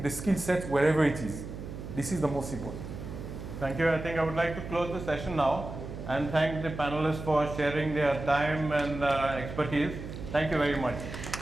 the skill set wherever it is. This is the most important. Thank you. I think I would like to close the session now and thank the panelists for sharing their time and expertise. Thank you very much.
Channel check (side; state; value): right; noise; hum, 9 dB below the sound